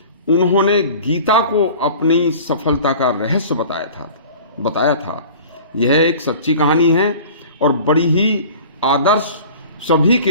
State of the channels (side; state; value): both; inverted; correlation -0.43